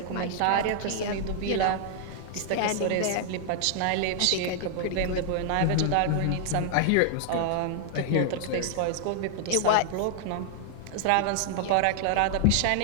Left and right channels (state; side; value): different; both; correlation 0.00